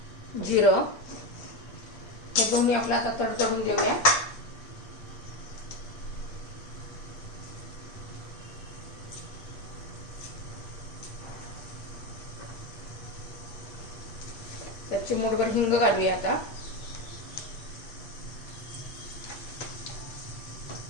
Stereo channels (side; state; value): right; late; 8.7 ms